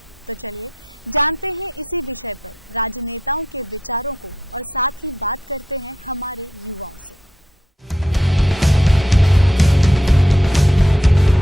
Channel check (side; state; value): both; normal; correlation 0.79